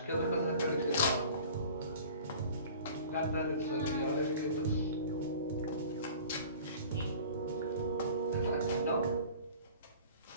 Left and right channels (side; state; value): both; inverted; correlation -0.44